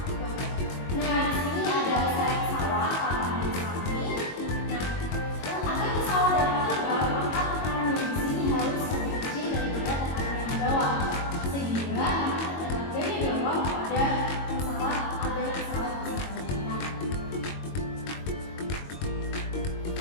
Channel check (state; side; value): late; right; 22 ms